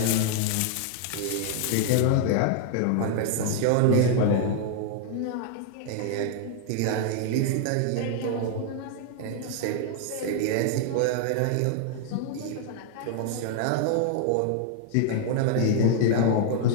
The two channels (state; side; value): different; both; correlation 0.00